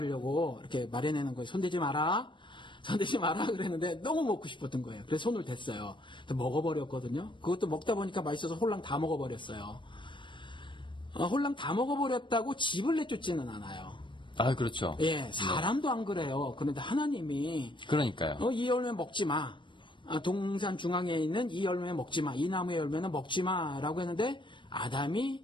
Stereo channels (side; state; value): right; late; 0.23 ms